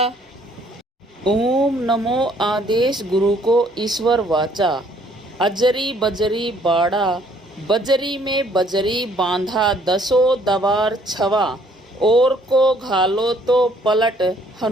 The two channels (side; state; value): both; normal; correlation 0.63